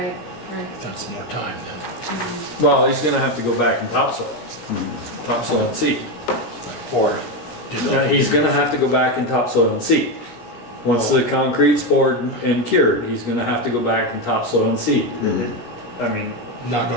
That's more time then. Well, he's gonna have to go back and topsoil and seed. Or He's gonna have to go back and topsoil and seed. Once the concrete's poured and cured, he's gonna have to go back and topsoil and seed. I mean, not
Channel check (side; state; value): right; late; 17 ms